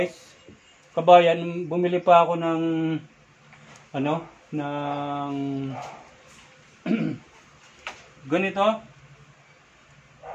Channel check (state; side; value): identical; both; correlation 1.00